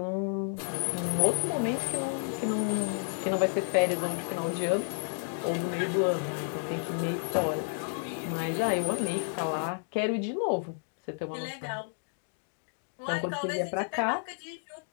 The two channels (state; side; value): silent; right; digital silence